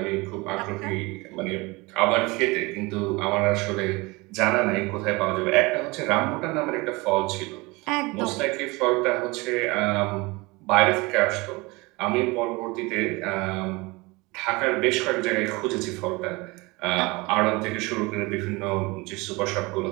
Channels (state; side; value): quieter; left; 24.3 dB